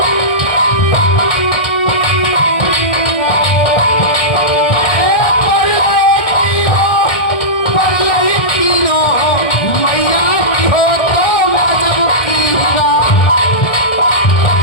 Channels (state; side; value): late; right; 1.6 ms